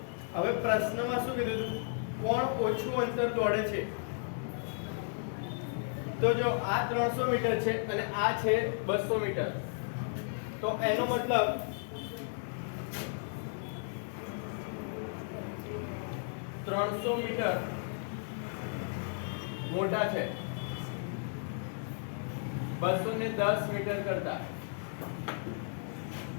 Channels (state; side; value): silent; right; digital silence